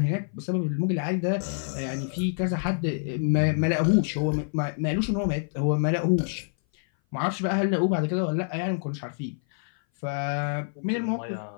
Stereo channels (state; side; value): silent; right; 57 dB below the other